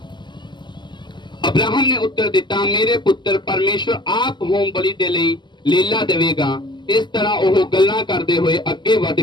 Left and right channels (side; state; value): right; late; 0.22 ms